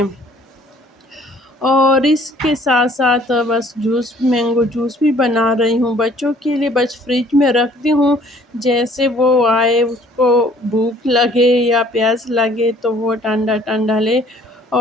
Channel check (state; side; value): normal; both; correlation 0.57